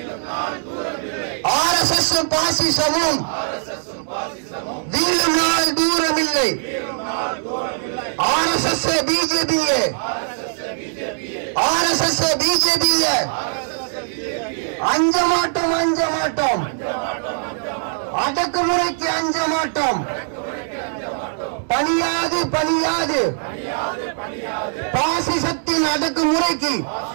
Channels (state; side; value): silent; left; digital silence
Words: RSS பாசிசமும் வீழும் நாள் தூரம் இல்லை. RSS பிஜேபியே அஞ்ச மாட்டோம். அடக்குமுறைக்கு அஞ்ச மாட்டோம். பணியாது பணியாது பாசிசத்தின் அடக்குமுறைக்கு